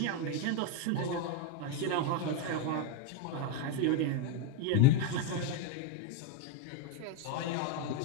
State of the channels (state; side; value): different; both; correlation 0.02